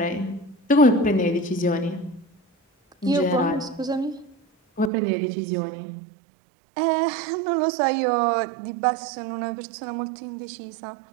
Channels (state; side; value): drops out; left; at 4.9 s